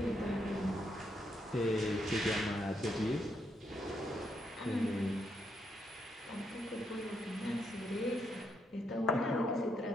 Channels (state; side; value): normal; both; correlation 0.78